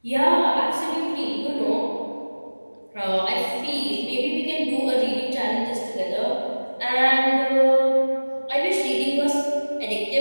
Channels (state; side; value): inverted; both; correlation -1.00